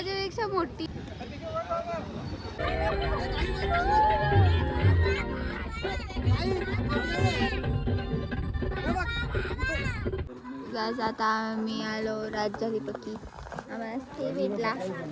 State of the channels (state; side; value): identical; both; correlation 1.00